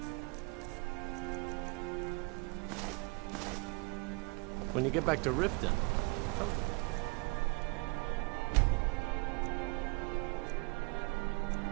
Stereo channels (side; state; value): left; quieter; 29.8 dB